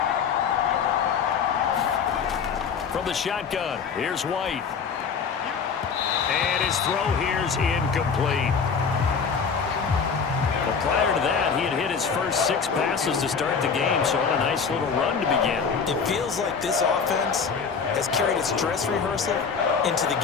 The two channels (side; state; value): right; quieter; 6.0 dB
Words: From the shotgun, here's White. And his throw here's incomplete. Well, prior to that, he had hit his first 6 passes to start the game, so on a nice little run to begin. It feels like this offense has carried its dress rehearsal into the